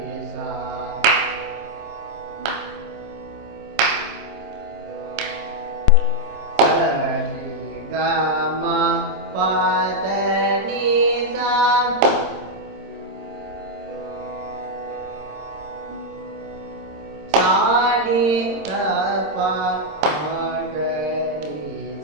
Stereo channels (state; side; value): late; left; 26 ms